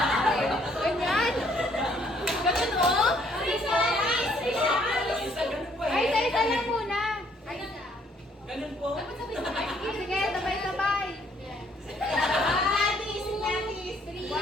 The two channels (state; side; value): normal; both; correlation 0.65